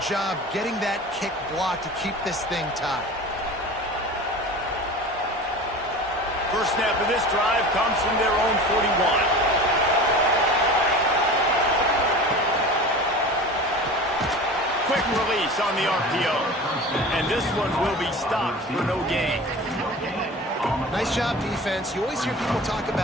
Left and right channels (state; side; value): normal; both; correlation 0.36